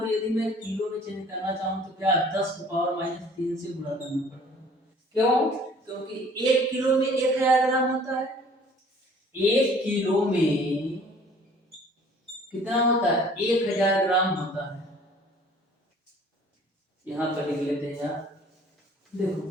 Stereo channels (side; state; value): both; normal; correlation 0.52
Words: यदि मैं किलो में चेंज करना चाहूं तो क्या 10⁻³ से गुणा करना पड़ेगा। क्यों? क्योंकि 1 किलो में 1000 ग्राम होता है। 1 किलो में कितना होता है? 1000 ग्राम होता है। यहां पर लिख लेते हैं यार, देखो